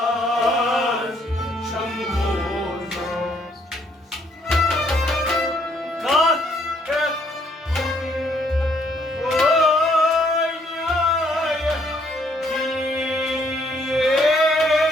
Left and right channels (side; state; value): both; normal; correlation 0.68